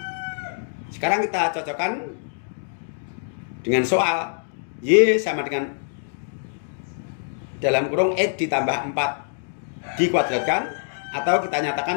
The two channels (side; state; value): right; silent; digital silence